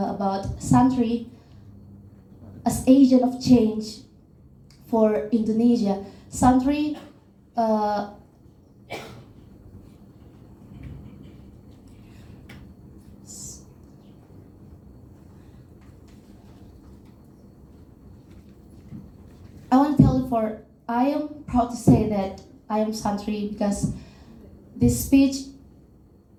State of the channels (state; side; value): identical; both; correlation 1.00